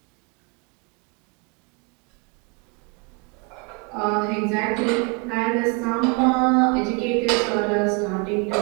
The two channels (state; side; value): quieter; left; 30.2 dB